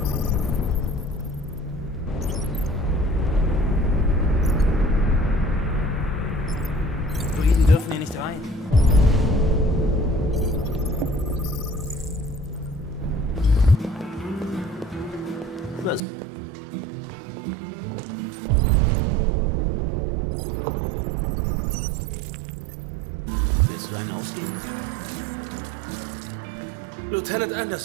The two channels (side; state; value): left; drops out; at 16.0 s